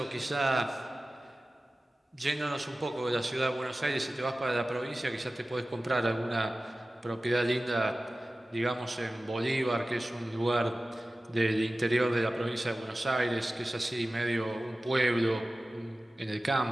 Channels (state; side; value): normal; both; correlation 0.96